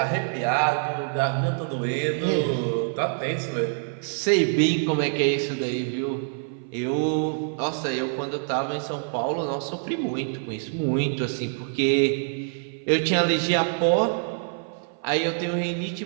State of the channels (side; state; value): left; silent; 56 dB below the other